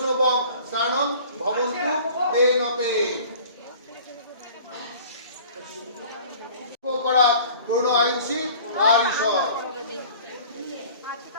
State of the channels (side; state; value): both; inverted; correlation -0.47